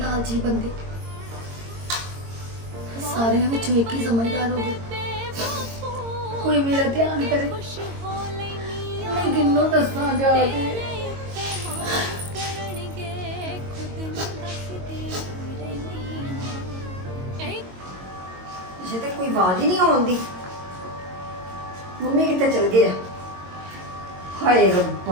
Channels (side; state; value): left; late; 22 ms